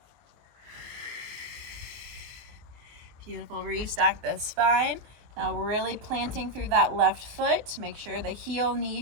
Beautiful. Restack the spine. Now really planting through that left foot. Make sure the heel, knee,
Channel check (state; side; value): late; left; 24 ms